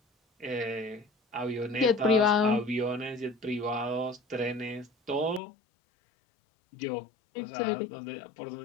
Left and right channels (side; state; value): right; drops out; at 5.4 s